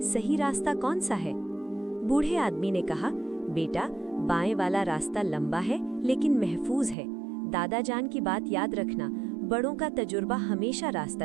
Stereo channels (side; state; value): left; drops out; at 7.0 s